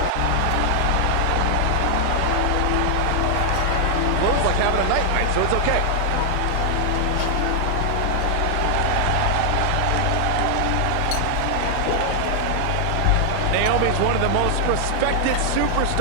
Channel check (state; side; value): different; both; correlation 0.00